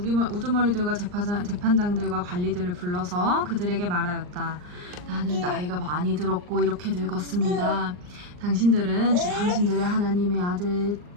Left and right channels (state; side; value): late; left; 39 ms